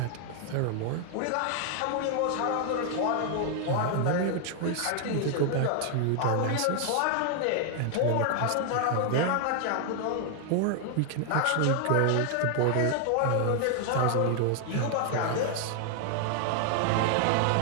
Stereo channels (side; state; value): both; different; correlation 0.00